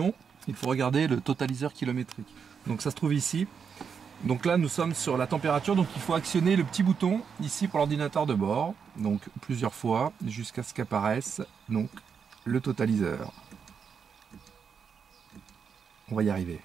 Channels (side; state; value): left; quieter; 6.5 dB